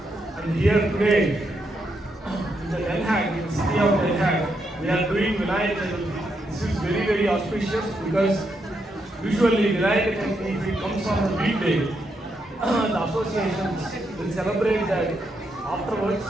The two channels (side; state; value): both; normal; correlation 0.80